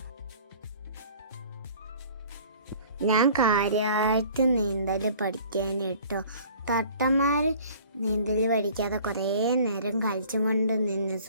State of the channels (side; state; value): both; inverted; correlation -0.50